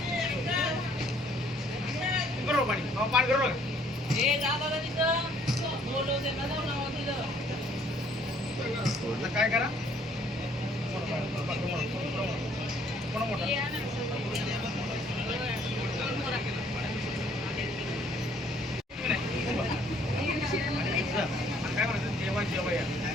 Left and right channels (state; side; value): normal; both; correlation 0.62